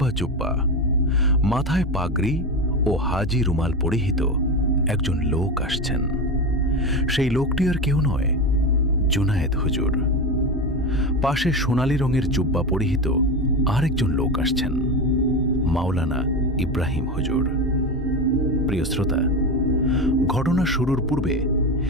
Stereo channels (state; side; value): normal; both; correlation 0.20